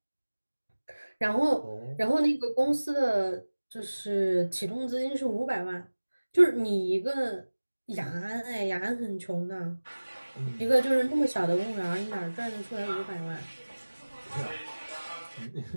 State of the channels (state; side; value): inverted; both; correlation -1.00